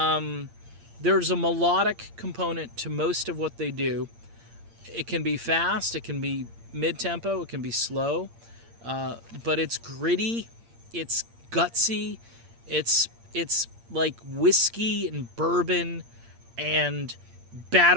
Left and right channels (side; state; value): left; late; 8.7 ms